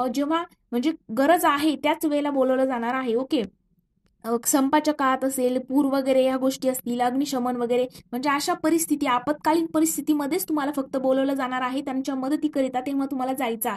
जेव्हा म्हणजे गरज आहे त्याच वेळेला बोलवलं जाणार आहे, ओके। संपाच्या काळात असेल, पूर वगैरे या गोष्टी असतील, अग्निशमन वगैरे, म्हणजे अशा परिस्थिती आपत्कालीन परिस्थितीमध्येच तुम्हाला फक्त बोलवलं जाणार आहे त्यांच्या मदतीकरिता, तेव्हा तुम्हाला जायचं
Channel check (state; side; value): identical; both; correlation 1.00